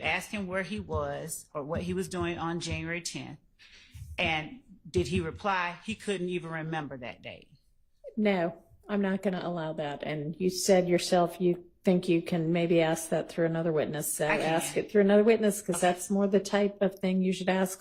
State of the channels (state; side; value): identical; both; correlation 1.00